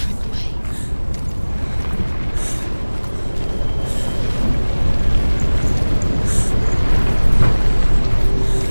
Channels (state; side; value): inverted; both; correlation -1.00